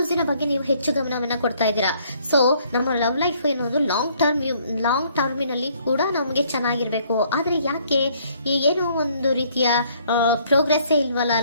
ಬಗ್ಗೆ ನೀವು ಹೆಚ್ಚು ಗಮನವನ್ನ ಕೊಡ್ತಾ ಇದ್ದೀರಾ. ಸೊ ನಮ್ಮ ಲವ್ ಲೈಫ್ ಏನೊಂದು ಲಾಂಗ್ ಟರ್ಮಿನಲ್ಲಿ ಕೂಡ ನಮಗೆ ಚೆನ್ನಾಗಿರ್ಬೇಕು. ಆದ್ರೆ ಯಾಕೆ ಏನೋ ಒಂದು ರೀತಿಯ ಪ್ರೋಗ್ರೆಸ್ ಇಲ್ವಲ್ಲ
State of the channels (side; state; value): both; inverted; correlation -0.64